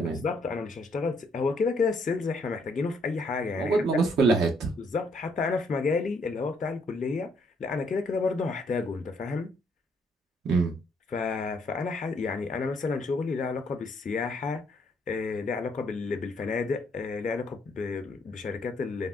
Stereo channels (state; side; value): normal; both; correlation 0.69